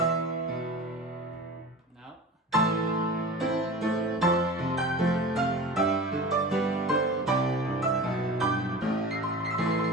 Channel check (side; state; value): both; normal; correlation 0.35